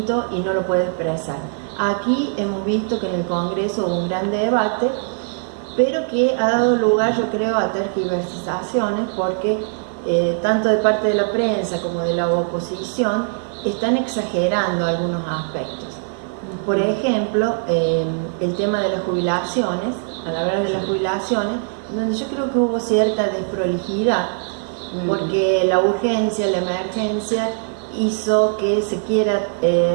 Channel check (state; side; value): silent; left; 56 dB below the other